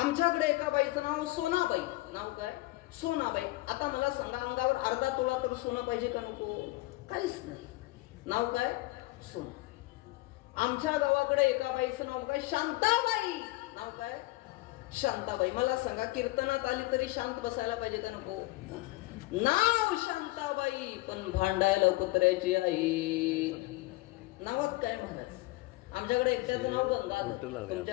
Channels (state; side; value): quieter; right; 20.6 dB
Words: आमच्याकडे एका बाईचं नाव सोनाबाई. नाव काय? सोनाबाई. आता मला सांगा, अंगावर अर्धा तोळा तर सोनं पाहिजे का नको? काहीच नाही. नाव काय? सोना. आमच्या गावाकडे एका बाईचं नाव काय? शांताबाई. नाव काय? शांताबाई. मला सांगा, कीर्तनात आली तरी शांत बसायला पाहिजे का नको? नाव शांताबाई, पण भांडायला कुत्र्याची आई. नावात काय महाराज? आमच्याकडे एकट्याचं नाव गंगाधर,